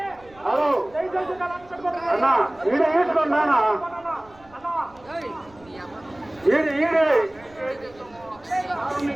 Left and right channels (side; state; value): right; noise; rumble, 26 dB below the sound